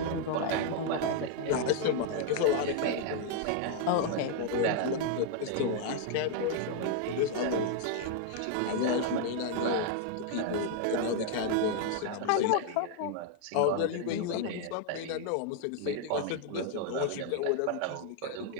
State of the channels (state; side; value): different; both; correlation 0.00